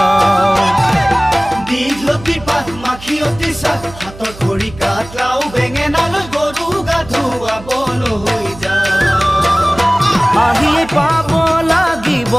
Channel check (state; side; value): noise; right; hum, 17 dB below the sound